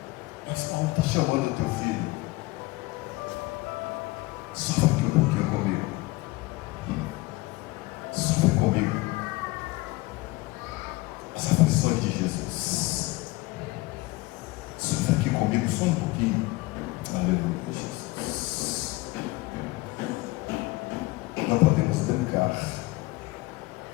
Mas Paulo está chamando o teu filho. Sofre aqui um pouquinho comigo. Sofre comigo as aflições de Jesus. Sofre aqui comigo só um pouquinho. Aleluia, Jesus. Não podemos brincar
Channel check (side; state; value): right; quieter; 21.2 dB